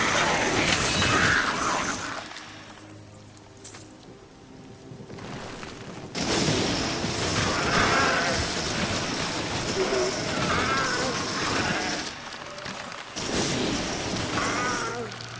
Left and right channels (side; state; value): both; identical; correlation 1.00